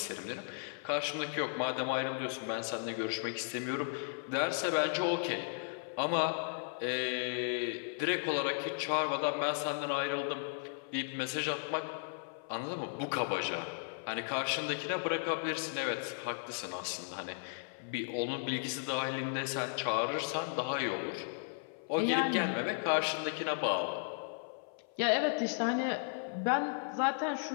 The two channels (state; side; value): silent; right; 54 dB below the other